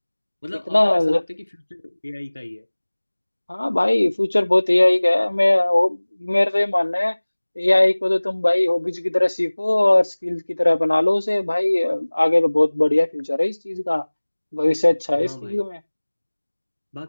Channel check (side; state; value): both; inverted; correlation -1.00